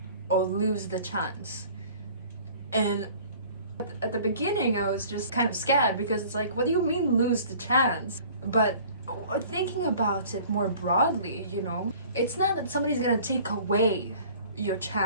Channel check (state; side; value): inverted; both; correlation -0.49